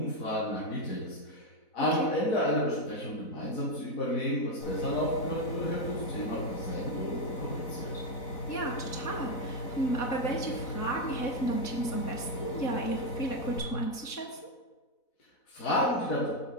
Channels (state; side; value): late; right; 4.0 ms